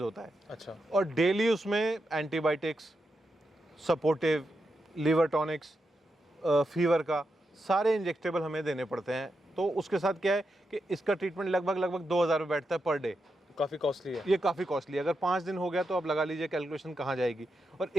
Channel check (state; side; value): normal; both; correlation 0.86